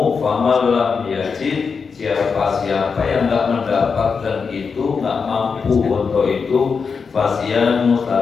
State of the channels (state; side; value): quieter; right; 5.4 dB